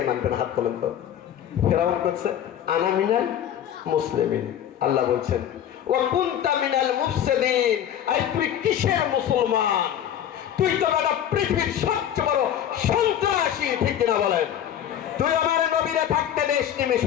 মানবেন? হাত তোলেন তো। ফেরাউন করছে আনা মিনাল মুসলিমিন, আল্লাহ বলছেন ওয়া কুনতা মিনাল মুফসিদিন, আই তুই কিসের মুসলমান? তুই তো বড় পৃথিবীর সবচেয়ে বড় সন্ত্রাসী, ঠিক কিনা বলেন? তুই আমার নবীরে থাকতে দেশ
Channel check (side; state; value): right; quieter; 10.2 dB